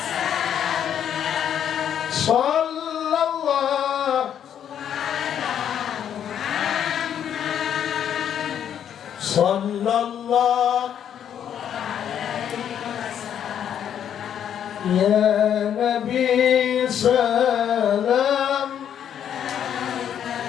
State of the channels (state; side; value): quieter; right; 9.3 dB